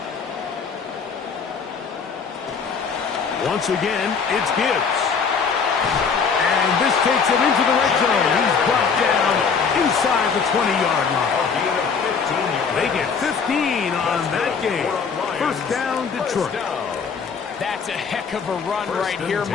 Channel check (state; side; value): quieter; right; 5.8 dB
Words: Once again, it's Gibbs. And this takes him into the red zone. He's brought down inside the 20-yard line. They get 15 on that game. First down, Detroit. That's a heck of a run right here,